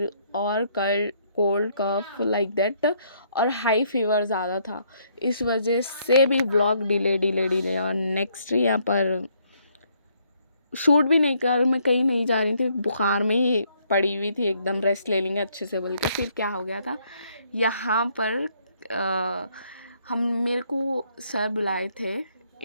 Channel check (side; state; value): both; inverted; correlation -0.69